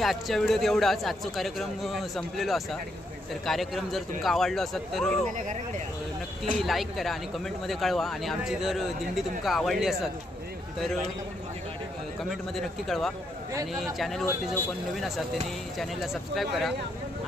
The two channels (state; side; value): normal; both; correlation 0.77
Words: आजच्या व्हिडिओत एवढाच. आजचा कार्यक्रम संपलेलो असा. तर कार्यक्रम जर तुमका आवडलो असत तर नक्की लाईक करा आणि कमेंटमध्ये कळवा. आणि आमची जर दिंडी तुमका आवडली असत तर कमेंटमध्ये नक्की कळवा. आणि चॅनलवरती जो कोण नवीन असतात त्यांनी चॅनलला सबस्क्राईब करा